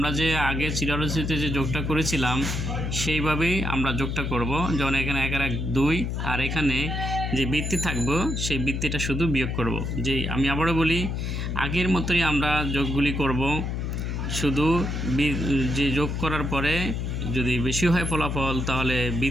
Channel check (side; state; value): left; noise; hum, 2 dB below the sound